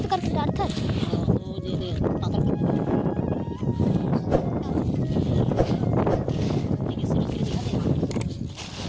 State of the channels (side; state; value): both; identical; correlation 1.00